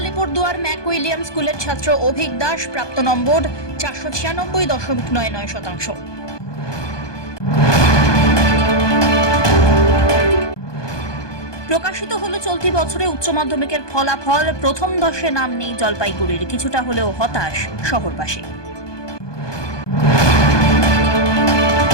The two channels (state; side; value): late; right; 1.2 ms